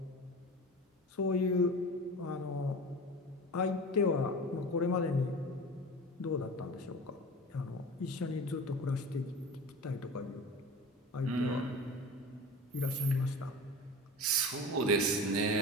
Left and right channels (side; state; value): both; normal; correlation 0.34